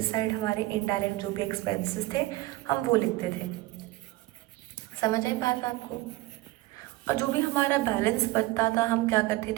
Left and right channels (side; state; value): left; quieter; 19.0 dB